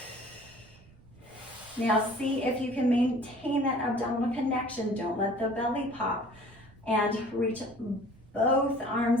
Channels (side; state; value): right; noise; rumble, 24 dB below the sound